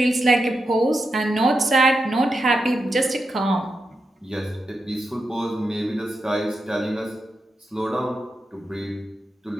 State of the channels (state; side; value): normal; both; correlation 0.87